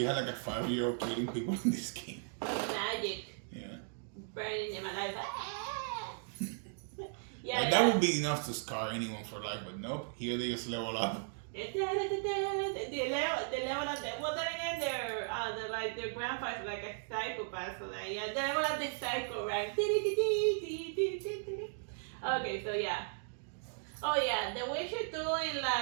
had like a 5-year-old killing people in this game. Magic. Yeah. burning in my life. Yeah, That would be enough to scar anyone for life, but nope. Here they just level up. They level up. Well, then again, their grandfather's like a psychopath, so that yeah, they level up the psycho rank. Okay, so yeah. Oh yeah, the Witcher 2 in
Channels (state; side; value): silent; left; digital silence